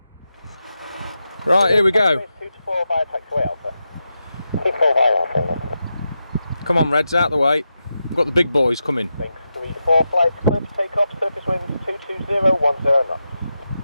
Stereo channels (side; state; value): both; inverted; correlation -0.89